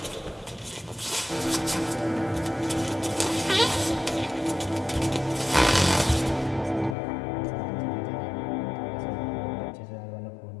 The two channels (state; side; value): drops out; right; at 7.0 s